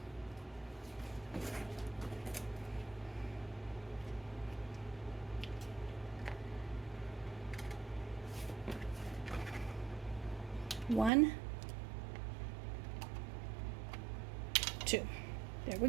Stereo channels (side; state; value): left; drops out; at 11.1 s